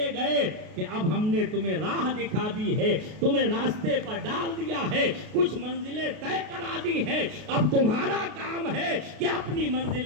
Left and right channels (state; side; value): late; left; 33 ms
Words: گئے کہ اب ہم نے تمہیں راہ دکھا دی ہے، تمہیں راستے پر ڈال دیا ہے، کچھ منزلیں طے کرا دی ہیں، اب تمہارا کام ہے کہ اپنی